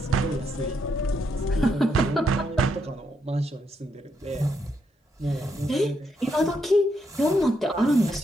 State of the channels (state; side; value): normal; both; correlation 0.78